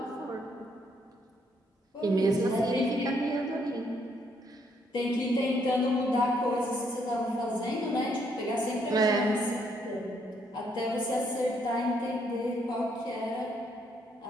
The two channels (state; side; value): normal; both; correlation 0.71